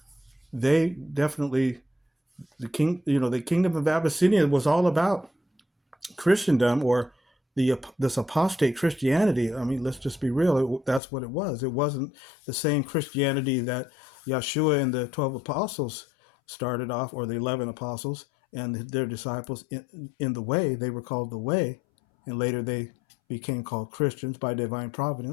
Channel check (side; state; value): right; drops out; at 11.0 s